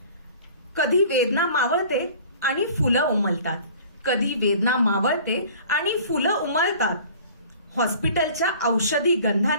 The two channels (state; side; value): inverted; both; correlation -0.47